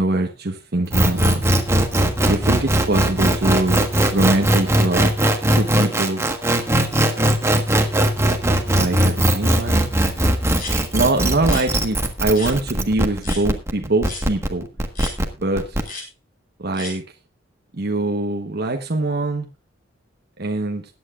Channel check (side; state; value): both; normal; correlation 0.64